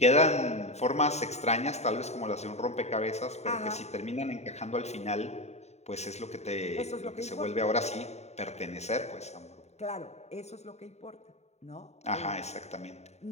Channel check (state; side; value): late; right; 0.32 ms